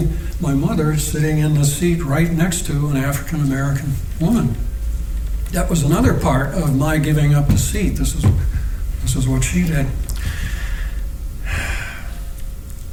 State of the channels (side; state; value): both; identical; correlation 1.00